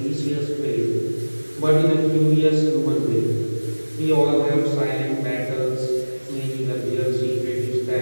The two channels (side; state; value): both; inverted; correlation -1.00